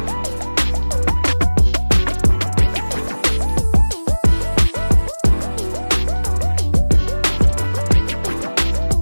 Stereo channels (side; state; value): both; inverted; correlation -1.00